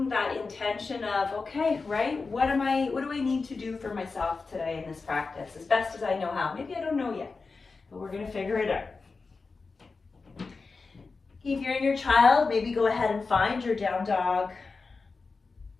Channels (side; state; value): right; quieter; 4.3 dB